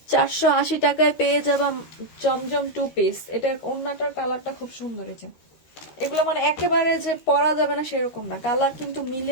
480 টাকায় পেয়ে যাবা জমজম 2 পিস। এটা ওড়নাটার কালারটা খুব সুন্দর। এই যে এগুলো মানে একেবারে যে পরা যাবে না সেরকম না, কালার কিন্তু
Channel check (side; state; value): right; late; 13 ms